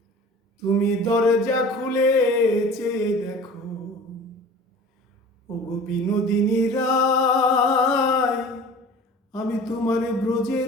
তুমি দরজা খুলে চেয়ে দেখো, ওগো বিনোদিনী রায়, আমি তোমারে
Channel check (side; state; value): both; normal; correlation 0.42